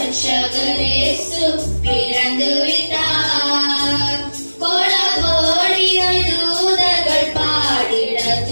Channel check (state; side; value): inverted; both; correlation -1.00